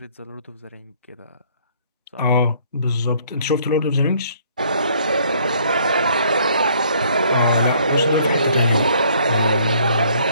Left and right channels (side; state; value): both; inverted; correlation -0.62